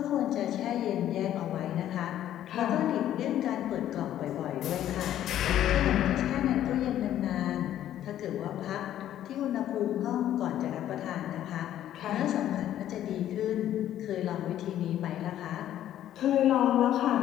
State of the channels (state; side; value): quieter; right; 11.8 dB